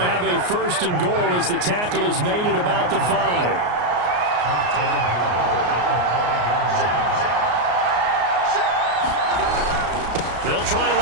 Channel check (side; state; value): left; late; 34 ms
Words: have a 1st and goal as the tackle is made at about the 5. They'll try and